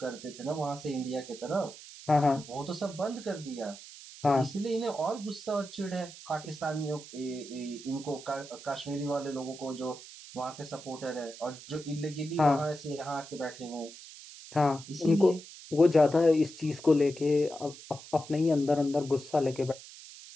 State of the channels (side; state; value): right; noise; hiss, 16 dB below the sound